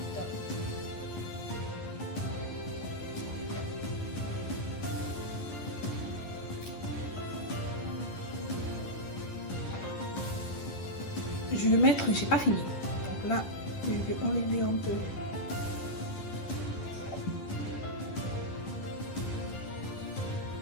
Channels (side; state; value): right; late; 10 ms